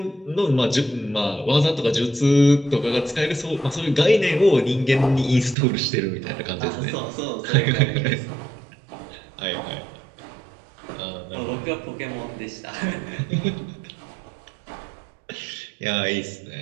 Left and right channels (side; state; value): left; drops out; at 5.6 s